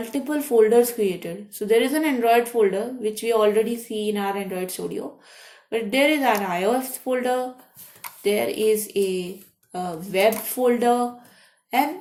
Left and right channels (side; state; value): both; identical; correlation 1.00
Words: folders created. So there is an Android folder which we already see in our Android Studio, but there is an iOS folder, there is a web folder, and